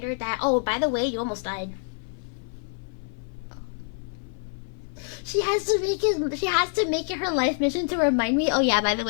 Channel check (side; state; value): right; silent; 61 dB below the other